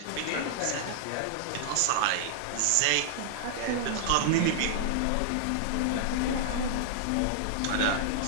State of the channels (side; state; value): both; different; correlation -0.01